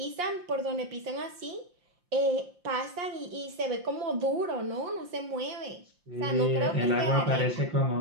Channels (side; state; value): left; late; 5.7 ms